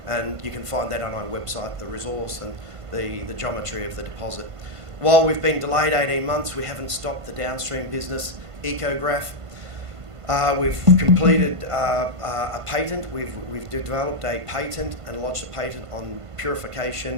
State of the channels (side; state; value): left; late; 1.5 ms